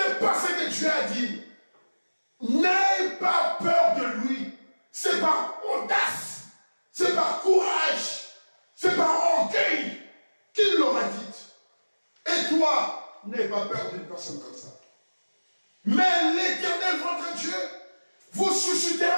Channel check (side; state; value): both; inverted; correlation -1.00